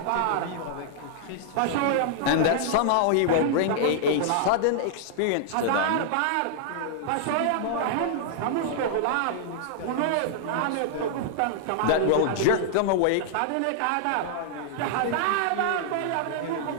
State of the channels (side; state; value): both; different; correlation -0.01